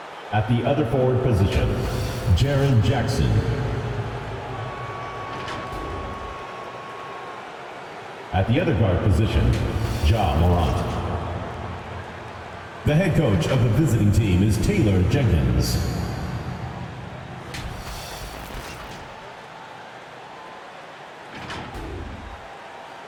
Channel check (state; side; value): identical; both; correlation 1.00